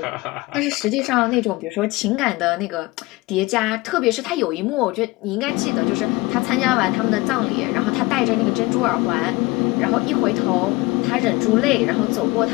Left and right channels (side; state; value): right; quieter; 22.1 dB